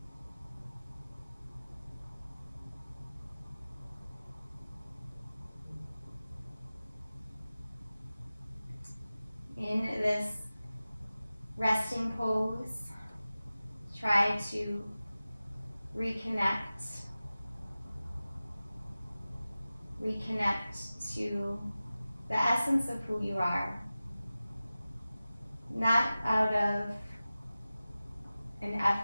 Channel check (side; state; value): both; inverted; correlation -0.96